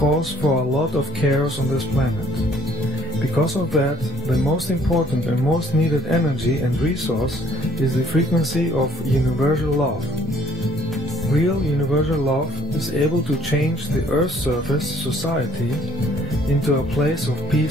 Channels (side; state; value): both; normal; correlation 0.60